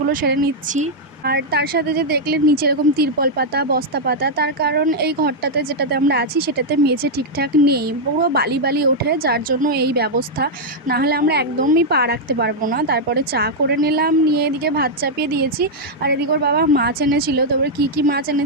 সেরে নিচ্ছি। আর তার সাথে যে দেখলে নিচে এরকম তিরপল পাতা, বস্তা পাতা, তার কারণ এই ঘরটাতে যেটাতে আমরা আছি সেটাতে মেঝে ঠিকঠাক নেই, পুরো বালি বালি ওঠে, যার জন্য এই ব্যবস্থা। না হলে আমরা একদমই পা রাখতে পারবো না। তারপরে চা করে নিলাম, নিয়ে এদিকে ভাত চাপিয়ে দিয়েছি। আর এদিকে ওর বাবা মাছ এনেছিল, তবে কী কী মাছ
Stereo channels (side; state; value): both; normal; correlation -0.03